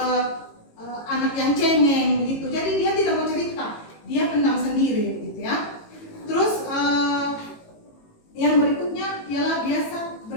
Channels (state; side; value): late; right; 18 ms